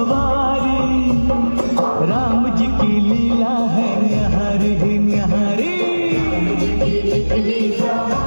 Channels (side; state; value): both; inverted; correlation -1.00